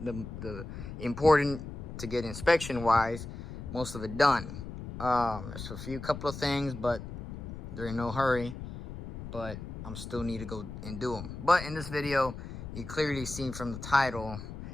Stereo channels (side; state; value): left; noise; rumble, 10 dB below the sound